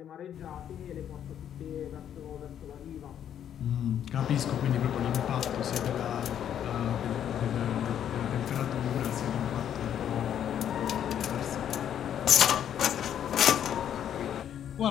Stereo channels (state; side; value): quieter; right; 9.7 dB